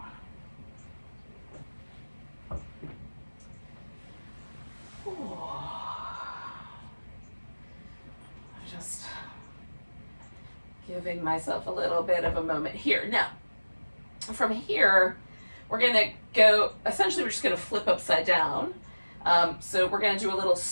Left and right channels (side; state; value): both; inverted; correlation -1.00